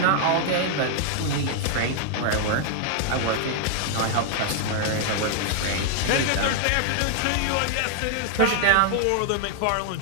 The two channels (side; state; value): both; different; correlation -0.01